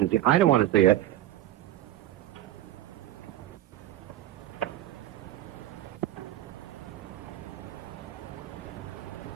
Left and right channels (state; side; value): quieter; left; 13.5 dB